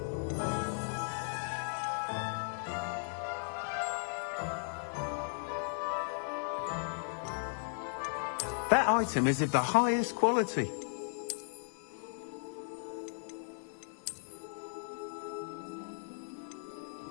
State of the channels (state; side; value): silent; right; digital silence